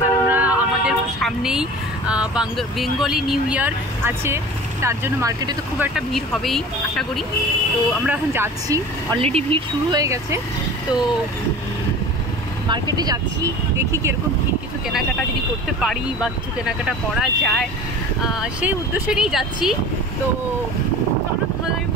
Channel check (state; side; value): normal; both; correlation 0.39